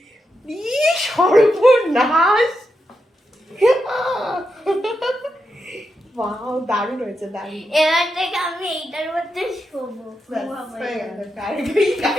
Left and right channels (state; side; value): normal; both; correlation 0.86